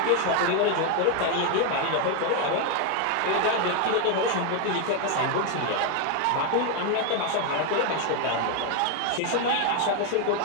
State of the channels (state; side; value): different; both; correlation 0.01